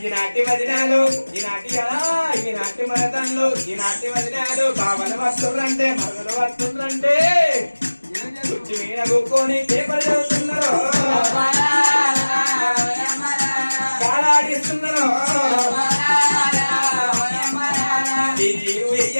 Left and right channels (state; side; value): inverted; both; correlation -1.00